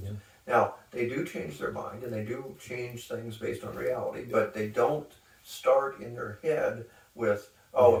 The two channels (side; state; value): both; identical; correlation 1.00